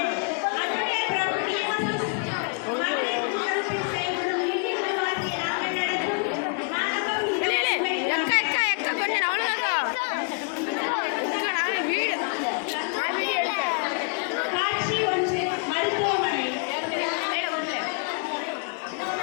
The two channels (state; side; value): quieter; right; 36.6 dB